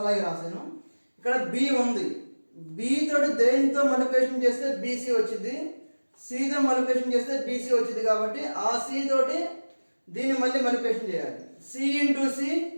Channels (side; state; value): both; inverted; correlation -1.00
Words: అలాగే రాశాను. ఇక్కడ B ఉంది, B తోటి దేనితో మల్టిప్లికేషన్ చేస్తే BC వచ్చింది, C తో మల్టిప్లికేషన్ చేస్తే BC వచ్చింది కాబట్టి ఆ C తోటి దీన్ని మళ్ళీ మల్టిప్లికేషన్ చేయాలి. C into